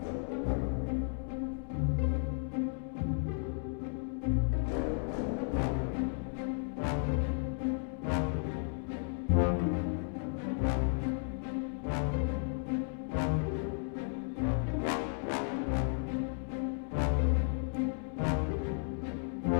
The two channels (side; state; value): right; silent; 55 dB below the other